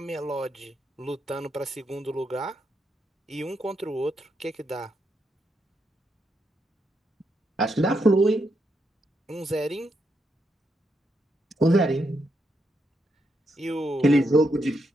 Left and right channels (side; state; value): both; normal; correlation 0.81